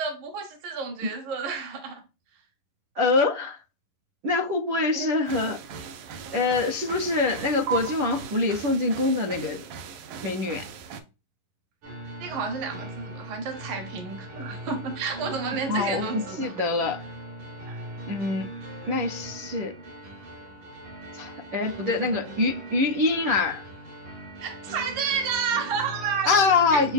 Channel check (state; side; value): late; left; 11 ms